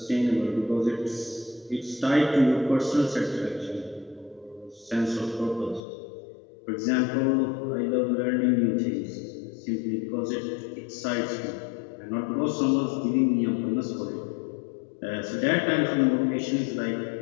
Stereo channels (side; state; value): right; drops out; at 5.8 s